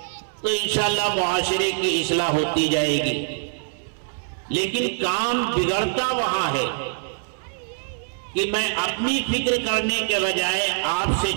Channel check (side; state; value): left; silent; 63 dB below the other